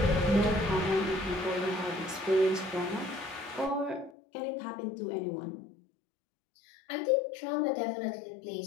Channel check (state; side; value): drops out; right; at 4.1 s